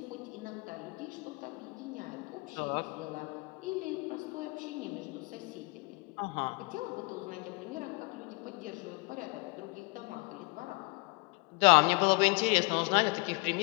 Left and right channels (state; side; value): quieter; right; 28.1 dB